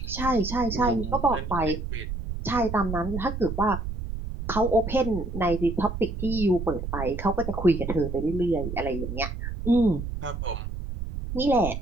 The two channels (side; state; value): right; noise; rumble, 6 dB below the sound